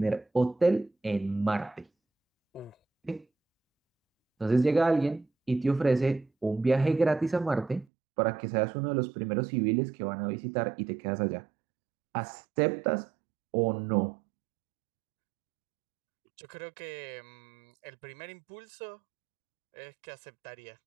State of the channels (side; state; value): left; drops out; at 7.9 s